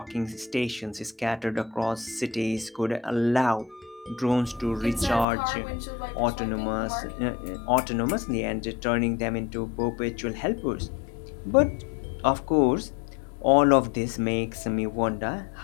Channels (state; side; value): drops out; right; at 5.2 s